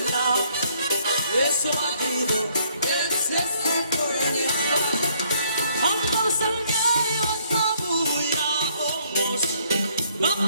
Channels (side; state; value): both; inverted; correlation -0.67